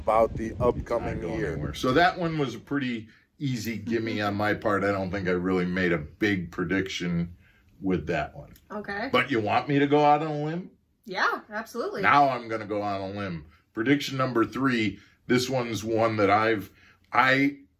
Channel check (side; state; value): both; identical; correlation 1.00